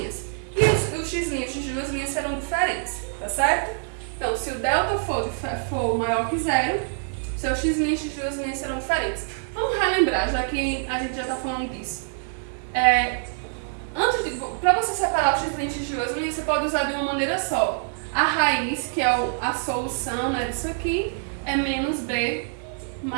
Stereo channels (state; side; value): silent; left; 62 dB below the other